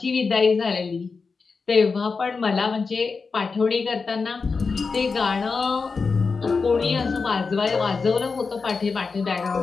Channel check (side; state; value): right; quieter; 4.7 dB